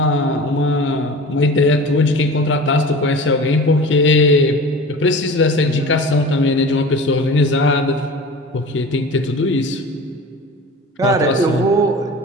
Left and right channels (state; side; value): normal; both; correlation 0.37